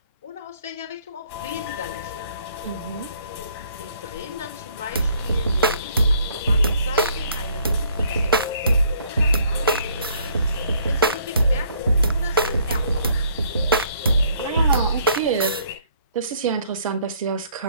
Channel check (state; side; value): inverted; both; correlation -0.63